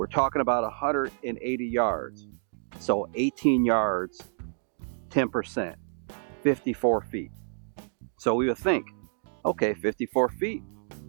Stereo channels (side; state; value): left; silent; digital silence